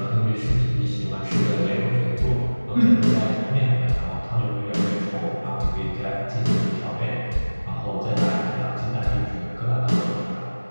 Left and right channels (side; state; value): both; inverted; correlation -1.00